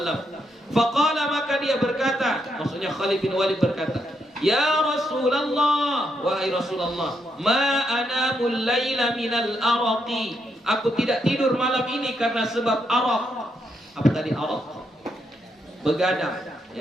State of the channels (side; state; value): both; normal; correlation 0.79